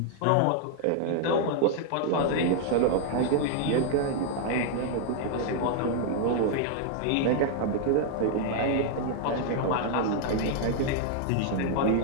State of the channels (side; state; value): both; different; correlation 0.00